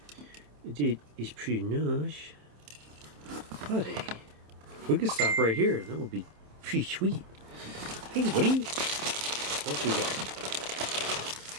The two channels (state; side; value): late; left; 27 ms